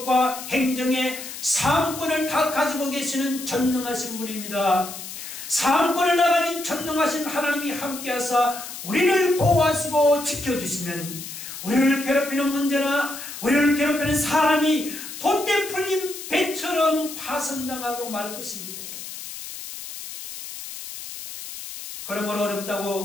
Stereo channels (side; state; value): left; noise; hiss, 10 dB below the sound